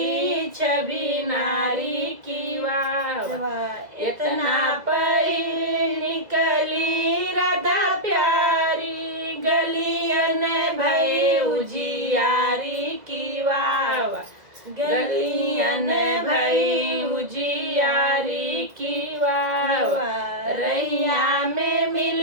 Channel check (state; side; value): late; left; 2.0 ms